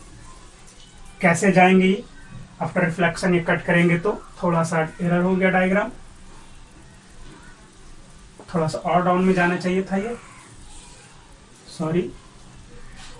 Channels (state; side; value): identical; both; correlation 1.00